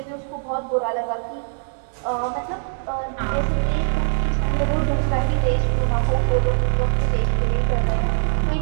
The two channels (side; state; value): left; silent; digital silence